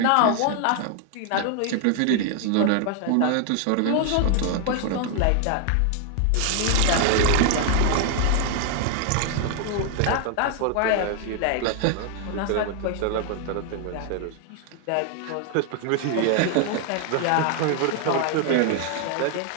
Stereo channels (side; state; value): both; different; correlation 0.00